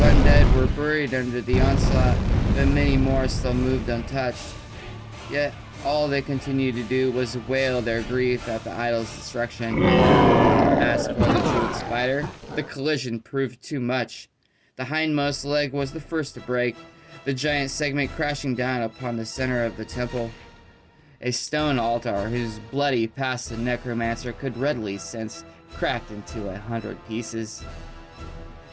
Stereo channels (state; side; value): identical; both; correlation 1.00